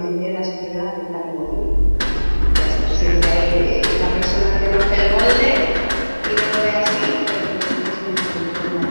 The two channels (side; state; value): both; inverted; correlation -1.00